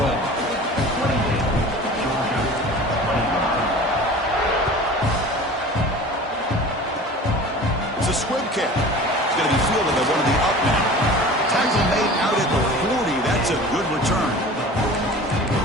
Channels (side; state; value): both; normal; correlation 0.40